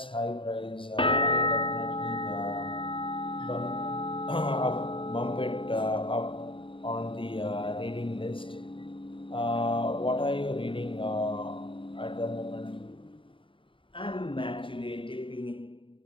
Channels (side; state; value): right; late; 0.25 ms